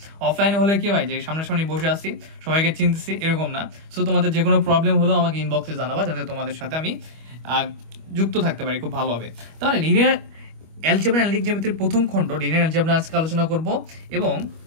অফলাইনে হলে কি হয় যে সামনাসামনি বসে আসি, সবাইকে চিনতেছি, এরকম না। সো তোমাদের যে কোনো প্রবলেম হলেও আমাকে ইনবক্সে জানাবা, যাতে তোমাদের সাথে আমি যুক্ত থাকতে পারি খুব ভালোভাবে। তাহলে লিনিয়ার অ্যালজেব্রা অ্যানালিটিক জিওমেট্রির প্রথম খণ্ড লিনিয়ার অ্যালজেব্রা আজকে আলোচনা করব। এবং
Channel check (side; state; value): left; late; 25 ms